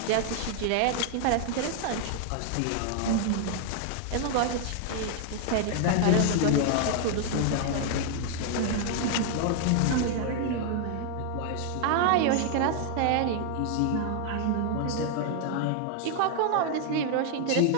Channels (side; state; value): both; different; correlation 0.00